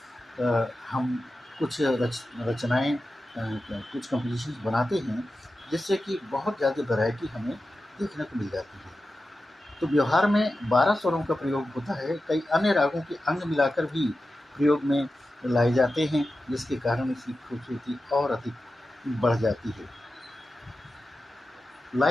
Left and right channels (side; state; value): both; normal; correlation 0.92